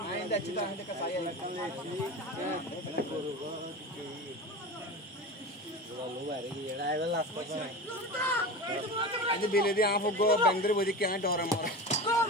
आइंदा अच्छी तरह से कसाई लगन ले छी लो बारे की एड़ा है लास्ट पर आज बेले दी आंख को बंदर बोदी क्या डोरा मार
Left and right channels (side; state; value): both; normal; correlation 0.28